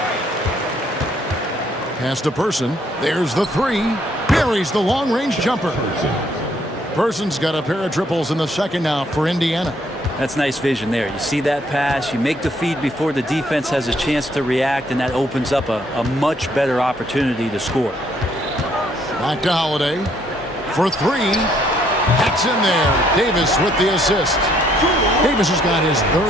Pass to Person. There's the three. Buries the long-range jumper. Person's got a pair of triples in the second now for Indiana. That's nice vision there. You see that pass, you make the feed before the defense has a chance to react, and that opens up a much better opportunity to score. Back to Holiday for three. That's in there. Davis with the assist. Davis has got his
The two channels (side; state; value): both; normal; correlation 0.68